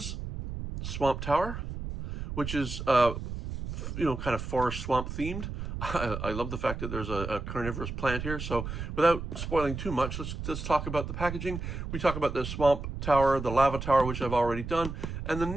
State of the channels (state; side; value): noise; right; rumble, 6 dB below the sound